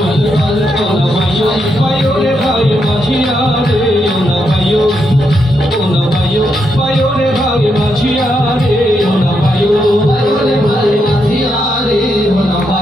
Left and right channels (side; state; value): both; normal; correlation 0.81